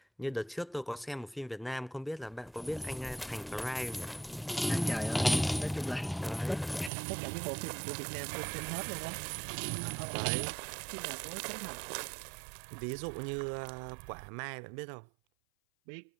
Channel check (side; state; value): left; drops out; at 6.9 s